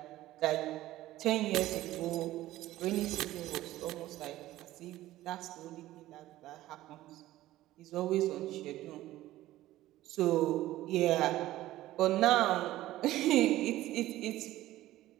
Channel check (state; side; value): quieter; left; 15.4 dB